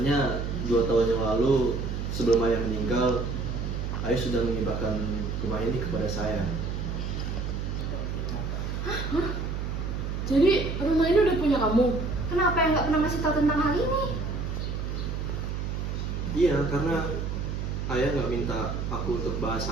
2 tahun yang lalu sebelum ayah meninggal, ayah sudah menghibahkan rumah ini kepada saya. Jadi rumah ini udah punya kamu? Kenapa yang nggak pernah ngasih tahu tentang hal ini? Iya, karena ayah nggak minta aku untuk bahas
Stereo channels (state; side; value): noise; right; hum, 3 dB below the sound